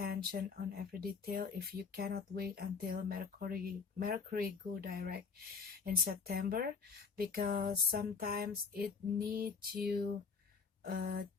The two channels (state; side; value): quieter; right; 5.4 dB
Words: on every detail. If you cannot wait until Mercury go direct in September, because sometimes it needs you